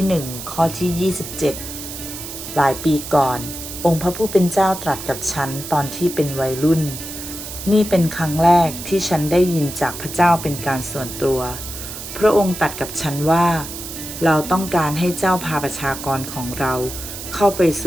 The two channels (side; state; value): right; noise; hiss, 10 dB below the sound